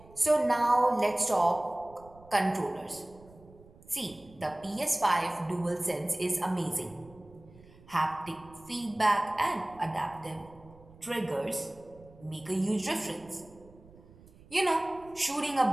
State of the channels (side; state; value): right; noise; rumble, 23 dB below the sound